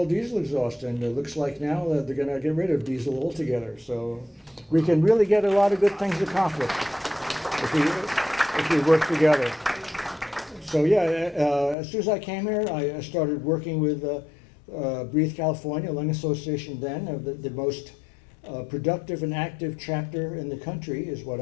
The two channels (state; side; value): drops out; right; at 11.8 s